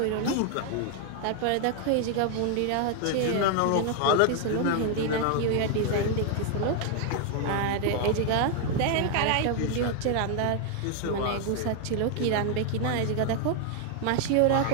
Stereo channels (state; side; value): different; both; correlation 0.00